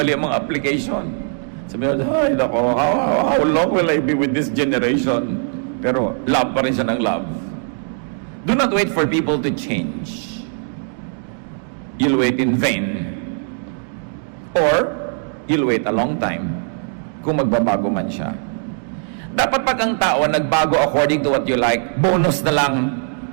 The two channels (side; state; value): left; silent; 58 dB below the other